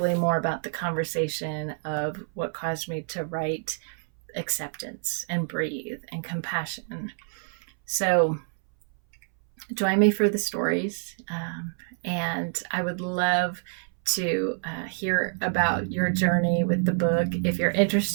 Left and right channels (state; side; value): silent; left; 60 dB below the other